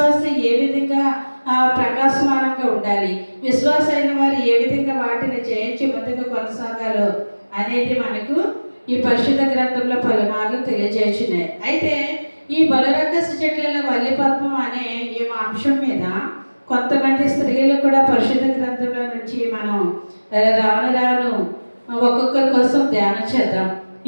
ఏ విధంగా ప్రకాశమానంగా ఉండాలి, విశ్వాసైన వారు ఏ విధంగా వాటిని జయించి ముందుకు కొనసాగాలో అనేది మనకు ఈ పరిశుద్ధ గ్రంథంలో పలుమార్లు తెలియజేస్తున్నాయి. అయితే ఈ బలిరక్కస చెట్లలో వల్లి పద్మం అనే ఈ అంశం మీద కొంతమంది స్త్రీలు కూడా పరిశుద్ధ గ్రంథంలో నుంచి మనం రాను ఒక్కొక్కరి కోసం ధ్యానం చేద్దాం.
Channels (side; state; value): both; inverted; correlation -1.00